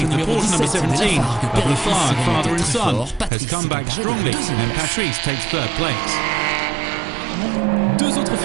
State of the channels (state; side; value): drops out; left; at 3.3 s